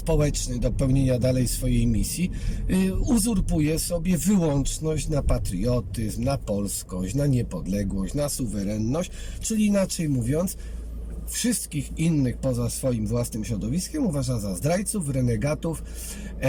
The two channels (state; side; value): identical; both; correlation 1.00